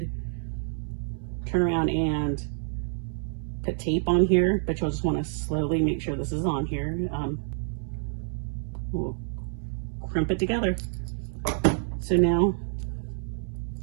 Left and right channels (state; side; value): silent; left; 59 dB below the other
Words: turn around and put tape on here, but you'll just want to slowly make sure this is on here. We'll crimp it together. So now